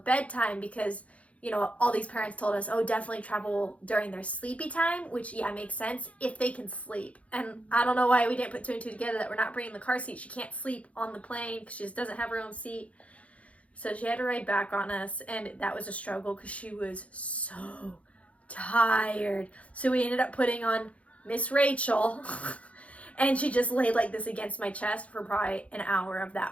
because, you know, all these parents told us, oh, definitely travel during their sleepy time, which, yeah, makes sense if they can sleep. And I don't know why we didn't put 2 and 2 together that we're not bringing the car seat. She can't sleep on the plane because she just doesn't have her own seat. So she had to ride back on us, and that was a struggle because she was so tired. So we ended up putting on Miss Rachel, and she just laid like this against my chest for probably an hour of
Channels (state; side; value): late; right; 0.064 ms